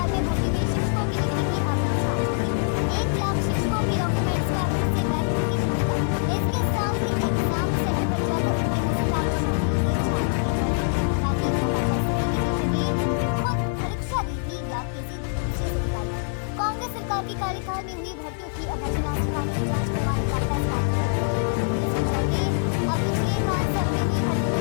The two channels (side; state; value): right; silent; digital silence